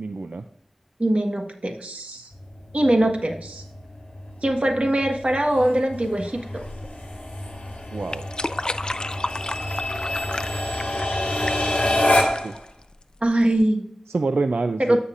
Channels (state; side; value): normal; both; correlation 0.93